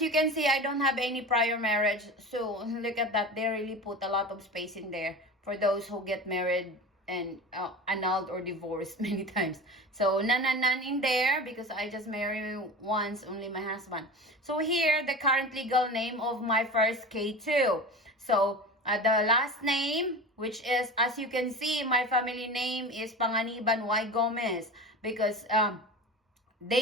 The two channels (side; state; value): both; normal; correlation 0.32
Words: can see, I don't have any prior marriage. So look at that. They really put a lot of space in there for those who get married annulled or divorced many times. So none in there because I just married once, only my husband. So here, the current legal name of my first K2. So the last name, which is, as you can see, my family name is Panganiban Y. Gomez, because